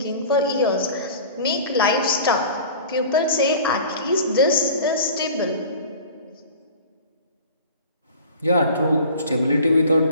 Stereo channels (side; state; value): both; inverted; correlation -0.41